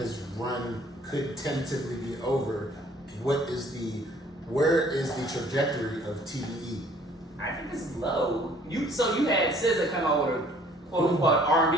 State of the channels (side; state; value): both; normal; correlation 0.57